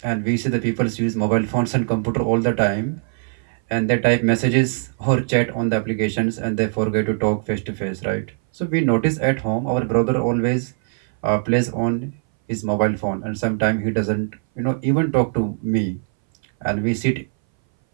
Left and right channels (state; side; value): silent; left; 61 dB below the other